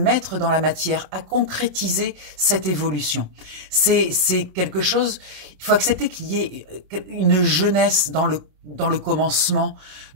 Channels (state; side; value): late; left; 27 ms